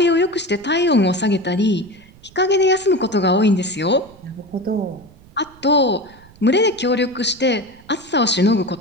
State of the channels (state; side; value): noise; right; rumble, 25 dB below the sound